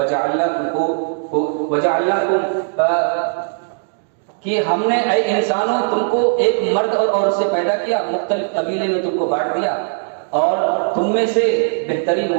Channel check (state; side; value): silent; left; digital silence